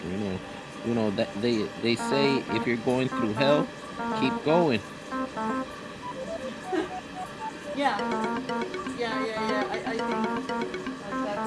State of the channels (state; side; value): identical; both; correlation 1.00